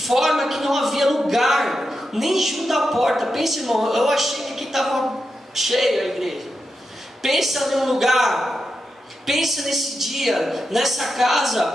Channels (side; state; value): both; normal; correlation 0.88